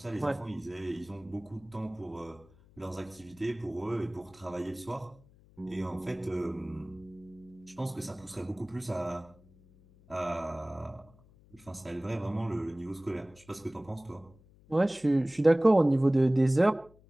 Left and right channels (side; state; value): left; noise; hum, 26 dB below the sound